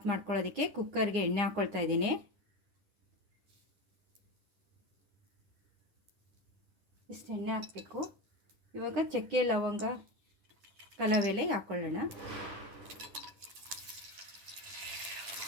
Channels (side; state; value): left; late; 9.8 ms